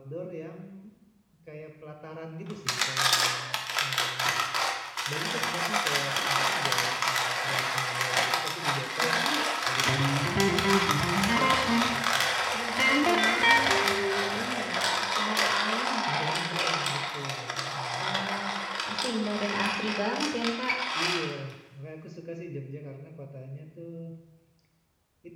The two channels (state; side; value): identical; both; correlation 1.00